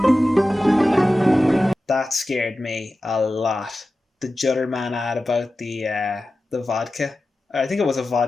That scared me a lot. The Judder Man ad about the vodka. I think it was a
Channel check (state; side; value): normal; both; correlation 0.94